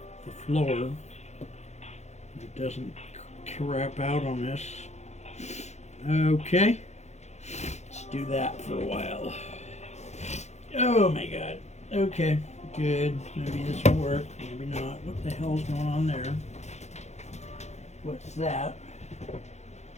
the floor. It doesn't crap out on this. Okay. Let's do that for a while. Oh my God. Okay. Good. Maybe this will work. Maybe not. What the hell's going on there? What's that?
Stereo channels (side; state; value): right; late; 0.33 ms